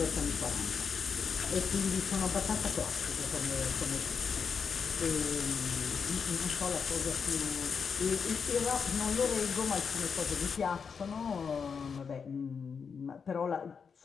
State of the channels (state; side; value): quieter; right; 6.1 dB